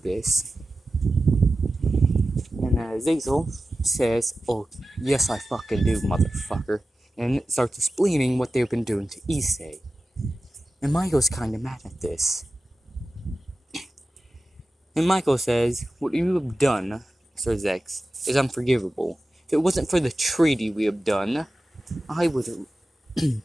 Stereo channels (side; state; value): both; normal; correlation 0.94